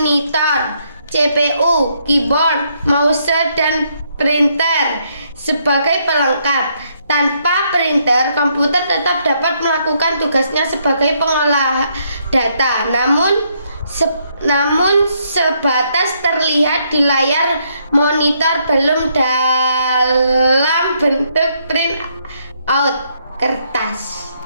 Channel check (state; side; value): inverted; both; correlation -0.73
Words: CPU, keyboard, mouse, dan printer sebagai pelengkap. Tanpa printer, komputer tetap dapat melakukan tugasnya sebagai pengolah data, namun sebatas terlihat di layar monitor, belum dalam bentuk print out kertas.